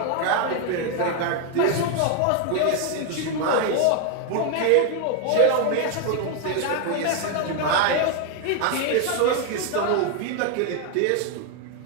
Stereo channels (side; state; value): both; different; correlation 0.01